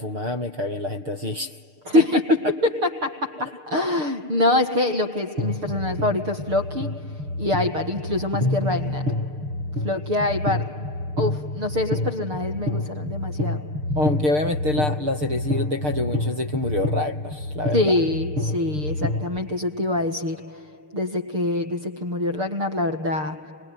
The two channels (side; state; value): left; late; 6.7 ms